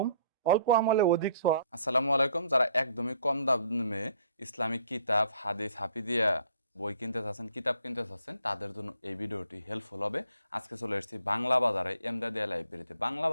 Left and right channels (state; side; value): inverted; both; correlation -0.63